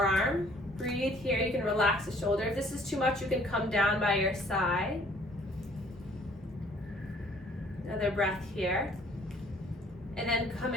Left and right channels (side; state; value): both; normal; correlation 0.58